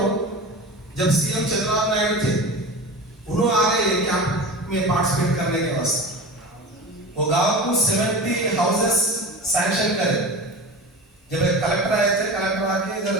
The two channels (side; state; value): both; normal; correlation 0.31